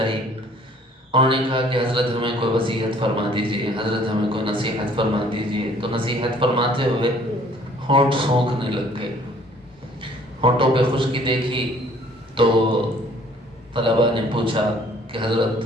انہوں نے کہا کہ حضرت ہمیں کوئی وصیت فرما دیجئے، حضرت ہمیں کوئی نصیحت فرما دیجئے۔ تو نصیحت فرماتے ہوئے ہونٹ سونکھنے لگ گئے، ہونٹوں پہ خشکی دیکھی تو طلباء نے پوچھا کہ حضرت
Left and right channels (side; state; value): both; normal; correlation 0.57